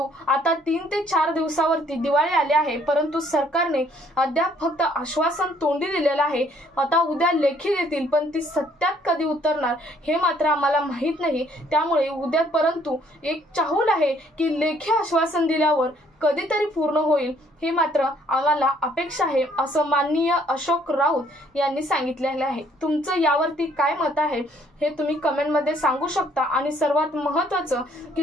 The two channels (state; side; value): normal; both; correlation 0.64